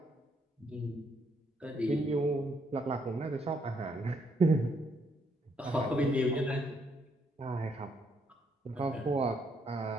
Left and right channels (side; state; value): both; normal; correlation 0.72